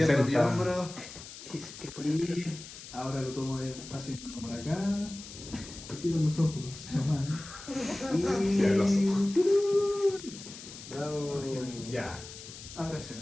60. mi hombro. Y ahora lo tomo despacio por acá. Y cierro los ojos nomás. Y... Cierra los Bravo. Ya. Ahora se ve.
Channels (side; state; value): left; noise; hiss, 14 dB below the sound